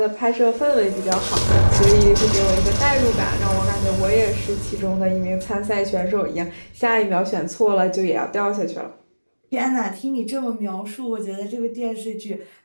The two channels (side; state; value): both; inverted; correlation -1.00